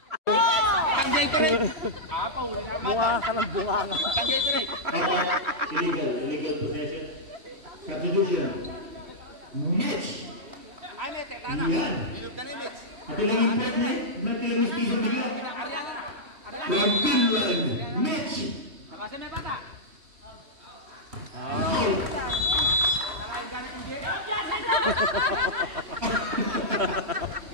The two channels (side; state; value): left; late; 3.1 ms